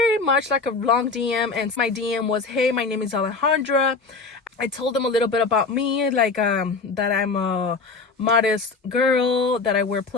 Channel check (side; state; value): right; quieter; 4.2 dB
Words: much like a long DM, and my DM was, "Hey, my name is Alejandra." I told them a little bit about me, like that I'm a modest girl, that I wear